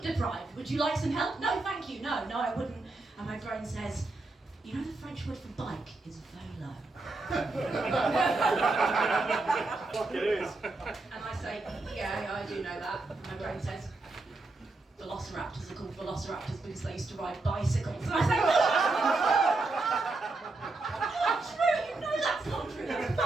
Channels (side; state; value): left; quieter; 3.3 dB